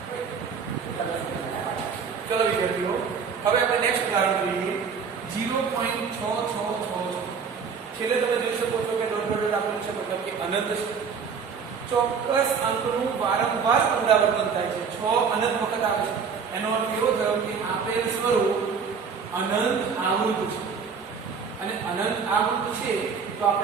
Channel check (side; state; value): left; quieter; 6.0 dB